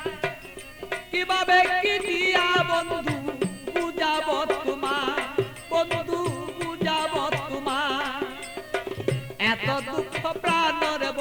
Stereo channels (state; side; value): identical; both; correlation 1.00